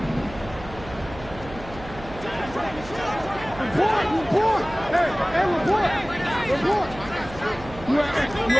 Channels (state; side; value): noise; right; hum, 15 dB below the sound